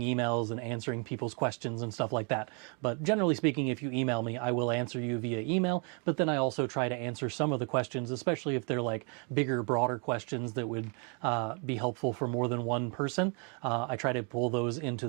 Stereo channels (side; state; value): left; quieter; 37.1 dB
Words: emails and answering people's questions and stuff like that. But generally speaking, if you email me, I will answer you via email, but then I also try to answer some of the questions, especially if they're like bigger, broader questions that would be helpful for more than one person. I try to pull those into